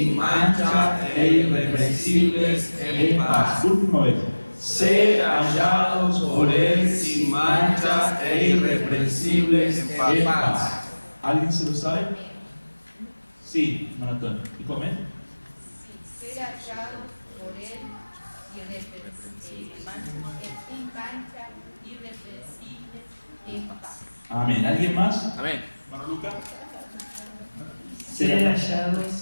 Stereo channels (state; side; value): inverted; both; correlation -1.00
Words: mancha e irreprensibles en paz. Última vez. Ser hallados por él sin mancha e irreprensibles en paz. ¿Alguien se lo sabe? Sí, Maratón. ¿Y come? Sí, ser hallados por él sin mancha, irreprensibles en paz. Amén. ¿Alguien más? Amén. Hermano Lucas. Ser